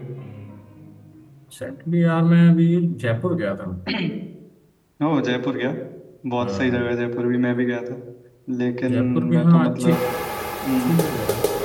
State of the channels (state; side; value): identical; both; correlation 1.00